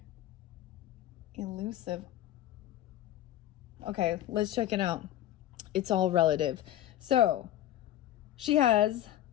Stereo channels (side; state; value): right; quieter; 13.0 dB